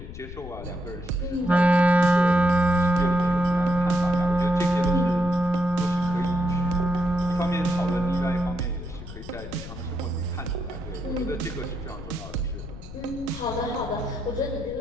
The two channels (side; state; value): left; noise; rumble, 12 dB below the sound